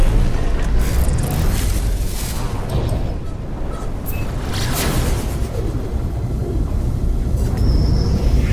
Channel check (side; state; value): both; identical; correlation 1.00